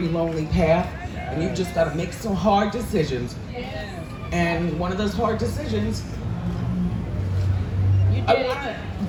lonely path, and you've just got to make some hard decisions. And one of those hard decisions, I want to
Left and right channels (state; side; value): identical; both; correlation 1.00